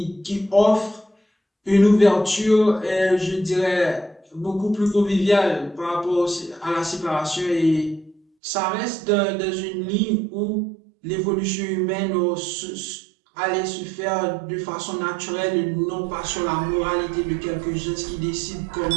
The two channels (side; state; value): left; drops out; at 8.2 s